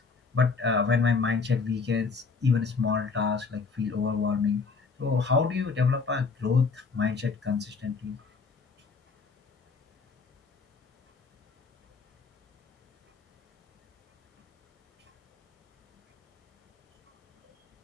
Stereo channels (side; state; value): right; quieter; 4.8 dB